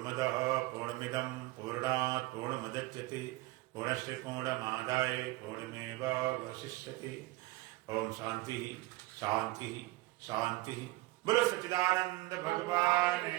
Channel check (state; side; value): quieter; left; 20.0 dB